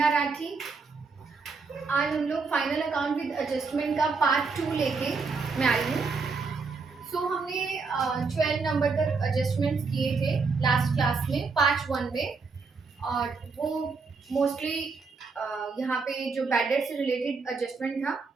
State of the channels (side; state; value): left; quieter; 4.6 dB